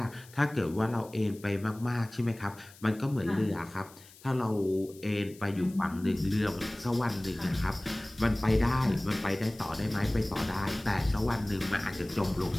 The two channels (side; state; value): left; noise; hiss, 22 dB below the sound